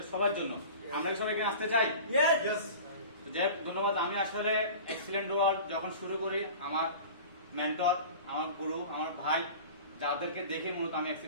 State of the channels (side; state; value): both; inverted; correlation -0.38